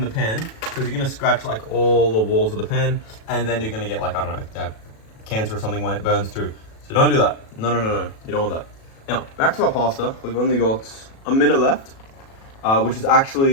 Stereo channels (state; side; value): late; right; 37 ms